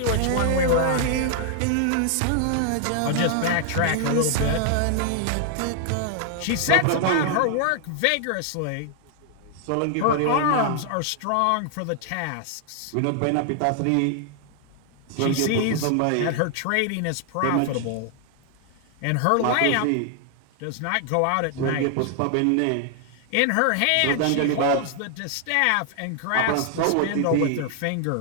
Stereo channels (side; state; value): both; different; correlation 0.00